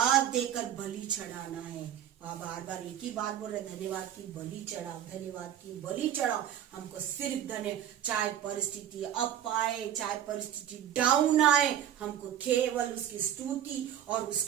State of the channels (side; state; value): left; quieter; 10.4 dB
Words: देकर बलि चढ़ाना है। बार बार एक ही बात बोल रहे, धन्यवाद की बलि चढ़ाओ, धन्यवाद की बलि चढ़ाओ। हमको सिर्फ धन्य, चाहे परिस्थिति अप आए, चाहे परिस्थिति डाउन आए, हमको केवल उसकी स्तुति और